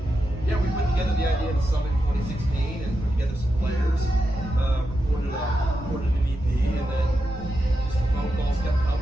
yeah, we put together the idea of the Summit in 2016 and put together some players, recorded an EP, and then just the phone calls kept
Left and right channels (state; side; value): noise; right; rumble, 14 dB below the sound